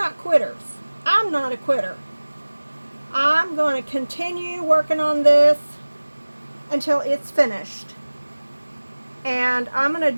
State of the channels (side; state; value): both; inverted; correlation -1.00